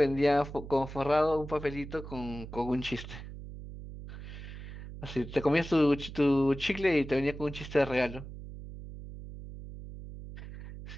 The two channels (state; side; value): noise; right; hum, 12 dB below the sound